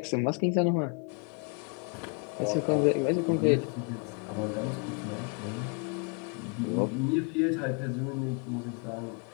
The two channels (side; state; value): right; quieter; 36.2 dB